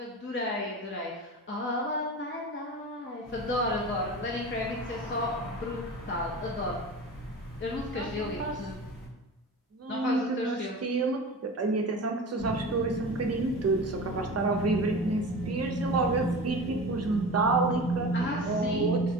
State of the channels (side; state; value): both; normal; correlation 0.33